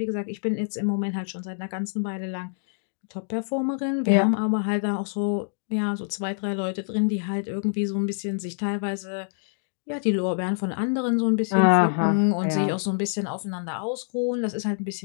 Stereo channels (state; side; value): silent; right; digital silence